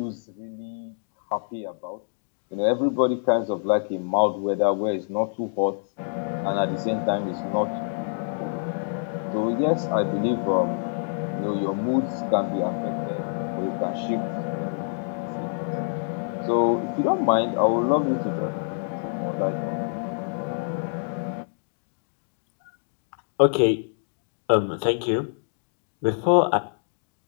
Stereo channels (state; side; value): silent; right; digital silence